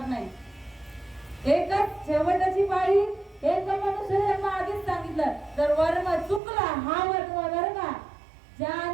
नाही. एकच शेवटची पाळी, एक मनुष्य जन्म. आधीच सांगितलं जर वर्म चुकला, हा वर्म बरं का,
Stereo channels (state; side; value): drops out; left; at 6.4 s